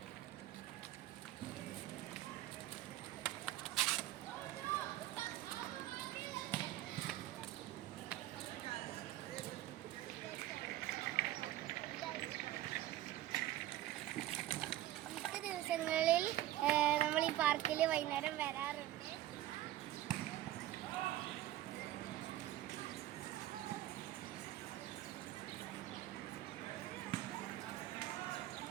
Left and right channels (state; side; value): quieter; left; 14.4 dB